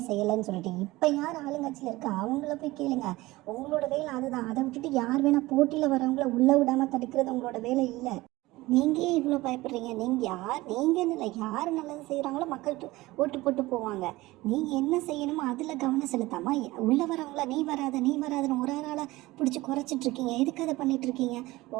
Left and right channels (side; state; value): left; quieter; 19.5 dB